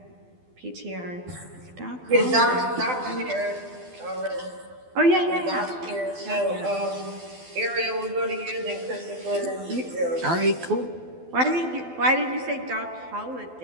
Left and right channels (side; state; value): left; late; 12 ms